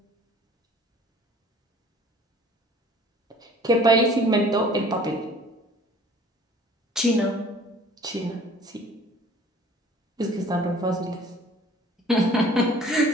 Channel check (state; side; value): normal; both; correlation 0.51